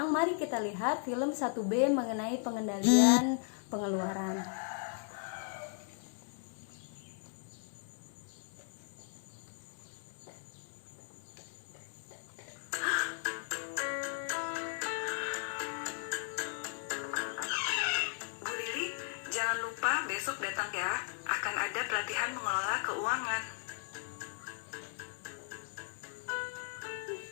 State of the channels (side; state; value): right; silent; 53 dB below the other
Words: mari kita lihat film 1B mengenai pengendalian pengeluaran. Jangan lupa besok datang ya, akan ada pelatihan mengelola keuangan.